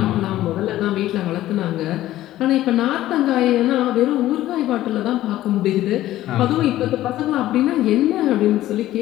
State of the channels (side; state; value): right; quieter; 14.5 dB